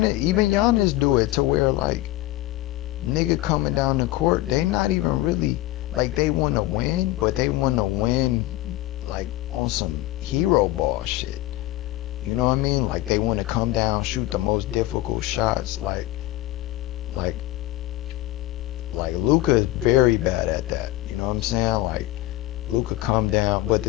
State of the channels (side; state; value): right; quieter; 16.7 dB